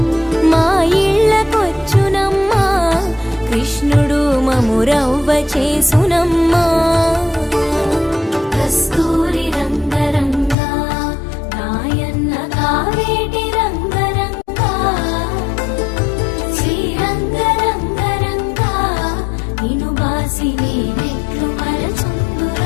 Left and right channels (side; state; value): right; drops out; at 10.6 s